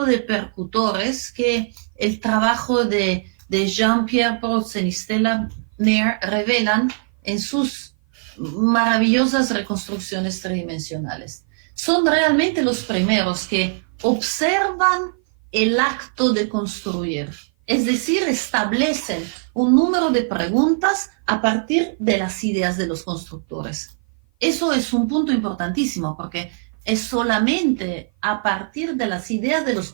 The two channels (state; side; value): silent; left; 56 dB below the other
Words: de percutores que el trabajo de Jean-Pierre Protzen y Stella Nair revelan en sus maravillosas reconstrucciones tridimensionales. Son realmente los primeros que observan el acto de construir, es decir, establecen un número de preguntas a partir de las ideas de los constructores. Eso es un punto importantísimo porque es solamente a partir de las ideas de los